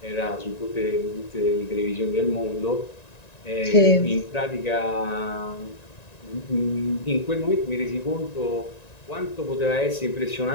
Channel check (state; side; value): late; right; 1.9 ms